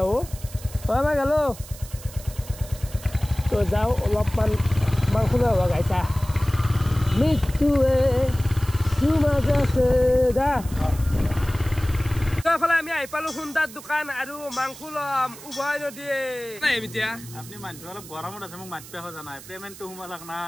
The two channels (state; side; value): noise; right; hiss, 17 dB below the sound